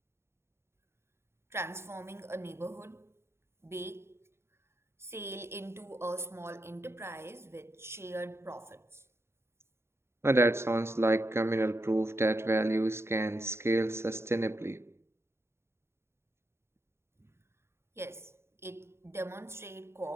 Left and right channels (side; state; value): left; late; 0.12 ms